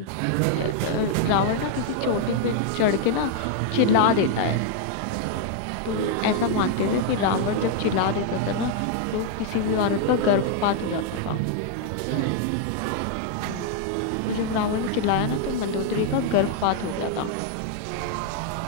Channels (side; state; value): both; different; correlation 0.00